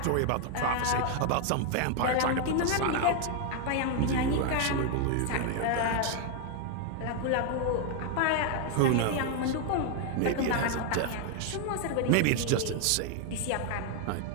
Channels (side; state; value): both; different; correlation 0.01